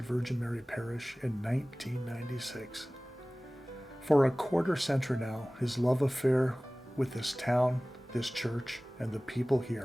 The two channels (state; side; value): normal; both; correlation 0.98